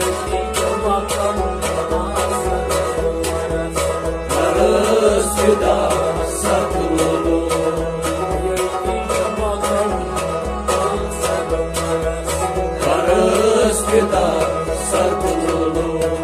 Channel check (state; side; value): identical; both; correlation 1.00